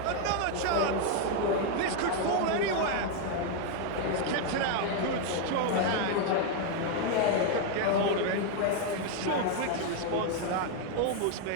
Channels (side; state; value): both; different; correlation 0.01